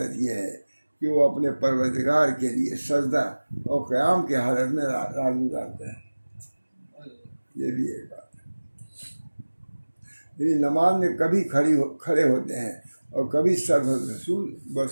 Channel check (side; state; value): both; inverted; correlation -1.00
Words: یہ ہے کہ وہ اپنے پروردگار کے لیے سجدہ اور قیام کی حالت میں رات گزارتے ہیں۔ یہ بھی ایک بات ہے، یعنی نماز میں کبھی کھڑے ہوتے ہیں اور کبھی